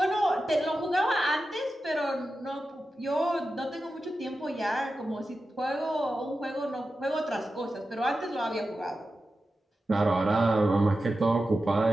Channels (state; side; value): normal; both; correlation 0.92